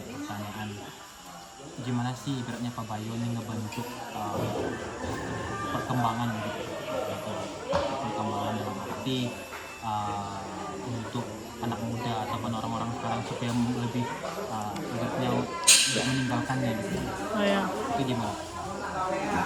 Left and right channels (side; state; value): both; identical; correlation 1.00